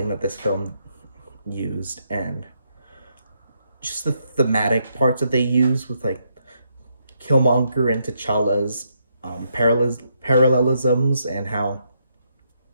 that this film used, and just the thematic parts that they use with like Killmonger and T'Challa's parallelisms, and how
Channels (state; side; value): inverted; both; correlation -0.77